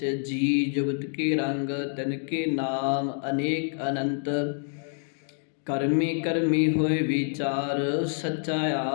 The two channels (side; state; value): right; silent; 60 dB below the other